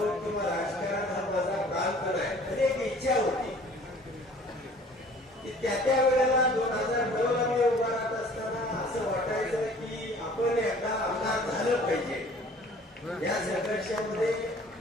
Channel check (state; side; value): normal; both; correlation 0.51